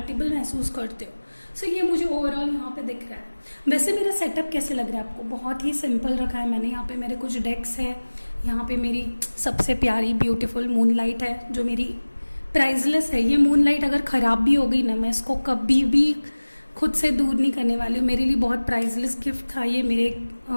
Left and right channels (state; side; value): inverted; both; correlation -1.00